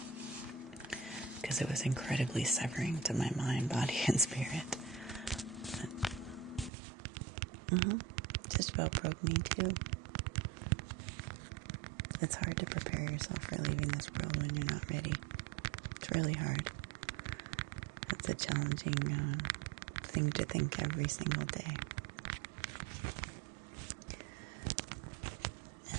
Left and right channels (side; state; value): left; drops out; at 6.7 s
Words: Because it was incredibly severing to my mind, body, and spirit. Just about broke me too. It's hard to prepare yourself for leaving this world when you're not ready. It's really hard. It's a challenging thing to think every single day.